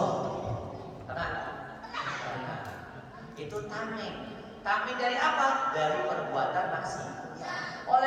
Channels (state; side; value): identical; both; correlation 1.00